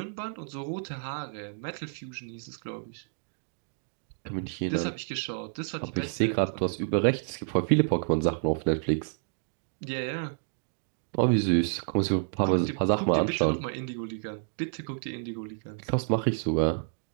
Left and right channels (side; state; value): left; silent; digital silence